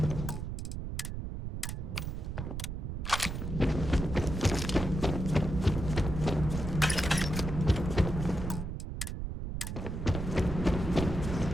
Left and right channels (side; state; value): right; noise; rumble, 4 dB below the sound